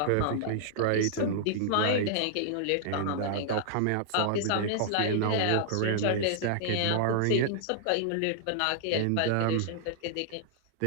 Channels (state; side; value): different; both; correlation -0.01